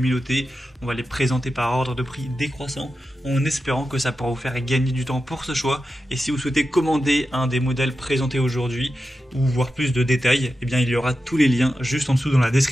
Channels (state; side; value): normal; both; correlation 0.91